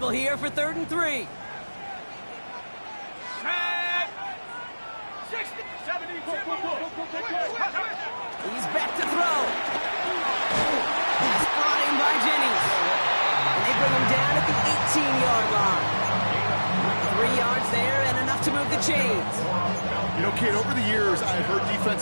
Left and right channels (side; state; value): both; inverted; correlation -1.00